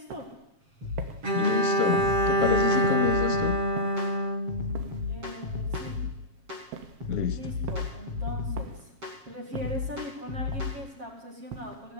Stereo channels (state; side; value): late; left; 7.4 ms